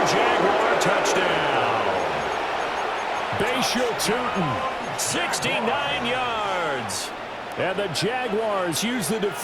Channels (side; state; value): both; identical; correlation 1.00